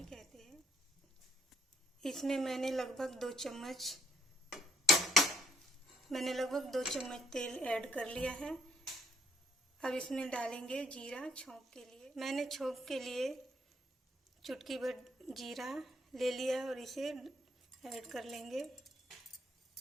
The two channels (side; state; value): both; normal; correlation 0.65